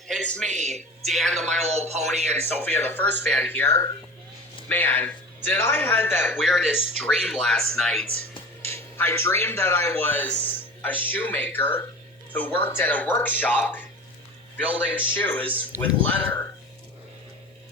it's me, Dan the My Little Pony, and Sophia the First Fan here. Man, did I had that weirdest dream last night. I dreamed that I was a shoemaker who worked at a workshop building shoes with leather.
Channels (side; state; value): both; normal; correlation 0.35